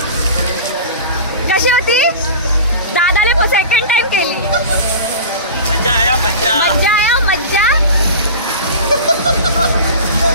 कशी होती. दादाने सेकंड टाइम केली. मज्जा आया मज्जा. मज्जा आया मज्जा.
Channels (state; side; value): inverted; both; correlation -0.34